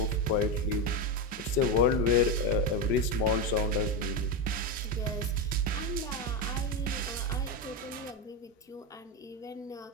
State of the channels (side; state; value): both; normal; correlation 0.11